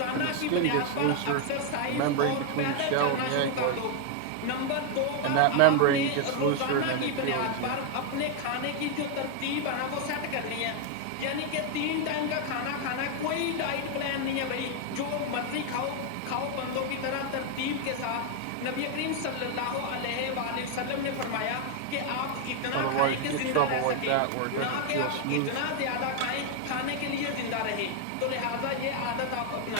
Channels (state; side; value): different; both; correlation 0.01